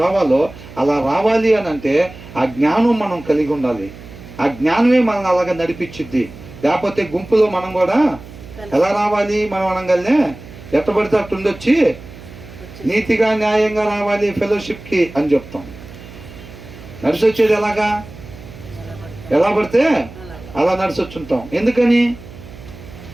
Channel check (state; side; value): noise; right; hum, 17 dB below the sound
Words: రావాలో అలా రావాలి అని అంటే ఆ జ్ఞానం మనం కలిగి ఉండాలి. ఆ జ్ఞానమే మనల్ని అలాగా నడిపించిద్ది. లేకపోతే గుంపులో మనం కూడా ఎలా రావాలి? మనం అనగానే ఎట్టబడితే అట్టు ఉండొచ్చి నీతిగా న్యాయంగా రావాలి ఫెలోషిప్కి అని చెప్తాం. నడిచి వచ్చేది ఎలాగా? ఎలా పడితే అలా నడిచొచ్చుంటాం. ఎందుకని?